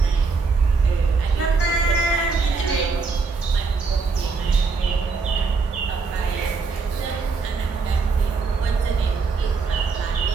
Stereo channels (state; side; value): quieter; left; 4.6 dB